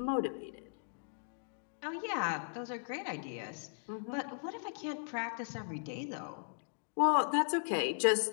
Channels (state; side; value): silent; right; digital silence